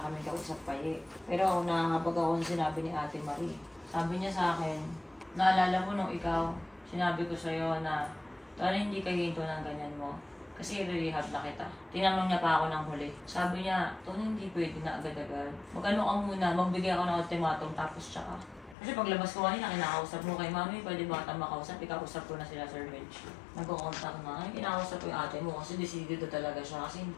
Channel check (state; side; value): drops out; right; at 18.8 s